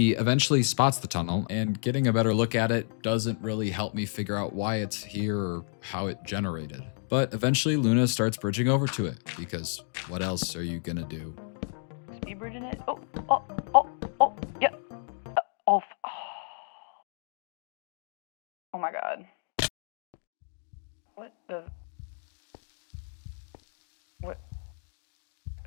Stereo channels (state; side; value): silent; right; digital silence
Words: eventually spots the tunnel, and getting a better look at it doesn't really help me figure out why it's here or how it generated. But eventually Luna starts bridging over to it, because what else are you gonna do? Speed bridging it? Yeah. Oh my god. What the? What?